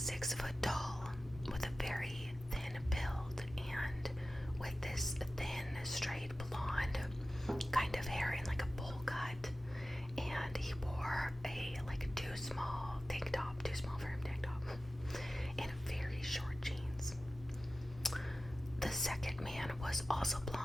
foot tall with a very thin build and with this thin, straight blonde kind of hair in like a bowl cut, and he wore a too small for him tank top, and very short jeans. The second man was also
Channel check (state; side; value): normal; both; correlation 0.95